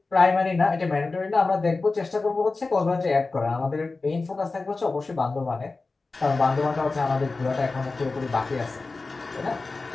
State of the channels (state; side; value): quieter; right; 3.7 dB